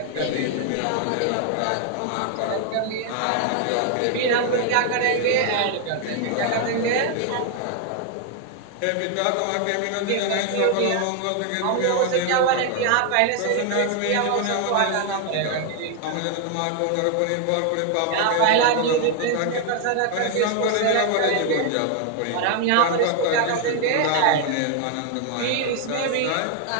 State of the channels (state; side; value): different; both; correlation 0.00